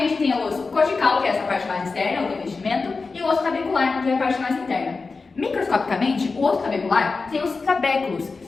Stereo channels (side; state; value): right; quieter; 4.2 dB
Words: tem o osso cortical, que é essa parte mais externa, o revestimento, e o osso tabecular, que é a parte mais interna. Microscopicamente, o osso tabecular tem os trabéculos,